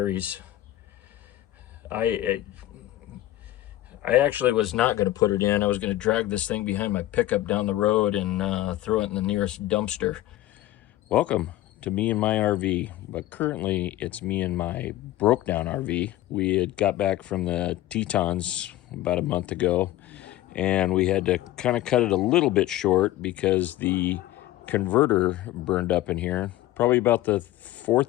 I actually was not going to put it in. I was going to drag this thing behind my pickup down the road and throw it in the nearest dumpster. Welcome to me and my RV, but currently it's me and my broke down RV. We had got back from the Tetons about a month ago, and we had to kind of cut it a little bit short because the converter burned up in here, probably about the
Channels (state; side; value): quieter; right; 15.0 dB